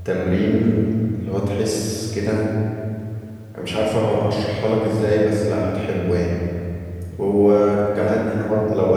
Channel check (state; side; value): identical; both; correlation 1.00